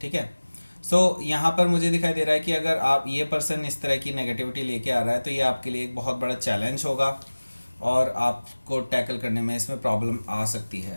है। सो यहाँ पर मुझे दिखाई दे रहा है कि अगर आप ये पर्सन इस तरह की नेगेटिविटी लेके आ रहा है, तो ये आपके लिए एक बहुत बड़ा चैलेंज होगा, और आपको टैकल करने में इसमें प्रॉब्लम आ सकती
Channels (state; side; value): inverted; both; correlation -1.00